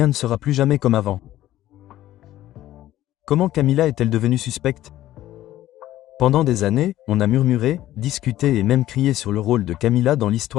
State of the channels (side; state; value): right; quieter; 14.0 dB